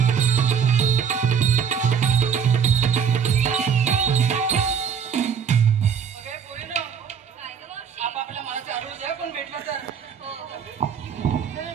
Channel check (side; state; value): left; quieter; 7.2 dB